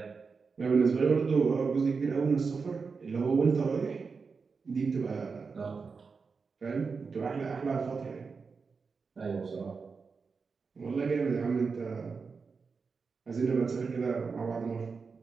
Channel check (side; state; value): left; quieter; 5.0 dB